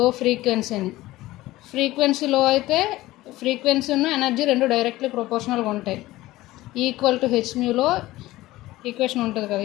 ఫ్రీక్వెన్సీ అని. ఫ్రీక్వెన్సీ లో అయితే ఫ్రీక్వెన్సీ ఉన్న ఎనర్జీ రెండు డైరెక్ట్లీ ప్రొపోర్షనల్గా ఉంటాయి. ఈక్వల్ టు హెచ్మ్యూలో ఈక్వేషన్ ఉంటుంది కదా,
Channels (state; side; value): quieter; right; 17.4 dB